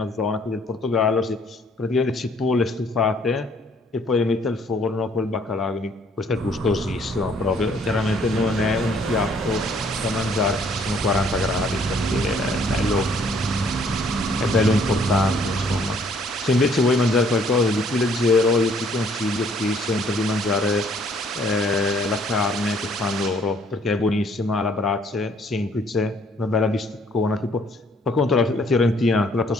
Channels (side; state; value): both; normal; correlation 0.62